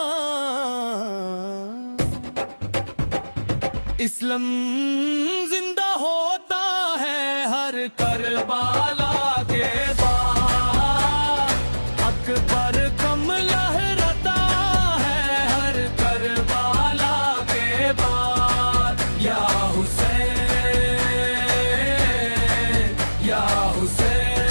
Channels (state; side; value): inverted; both; correlation -1.00